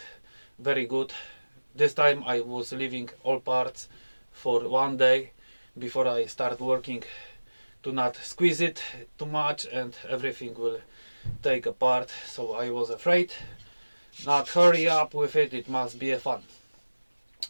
very good. This time I was leaving all parts for 1 day before I start working to not squeeze it too much and everything will take apart. So I was afraid not hurry up with it, it must be a fun.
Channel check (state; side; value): inverted; both; correlation -1.00